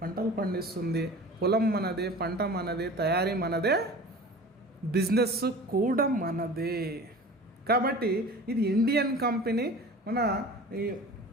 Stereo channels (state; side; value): normal; both; correlation 0.39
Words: పండిస్తుంది. పొలం మనదే, పంట మనదే, తయారీ మనదే, బిజినెస్ కూడా మనదే. కాబట్టి ఇది ఇండియన్ కంపెనీ